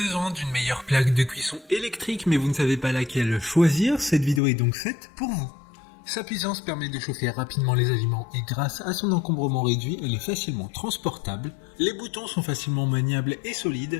d'une meilleure plaque de cuisson électrique mais vous ne savez pas laquelle choisir, cette vidéo est donc faite pour vous. Sa puissance permet de chauffer rapidement les aliments et grâce à son encombrement réduit, elle est facilement transportable. Les boutons sont facilement maniables et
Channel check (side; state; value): right; drops out; at 4.4 s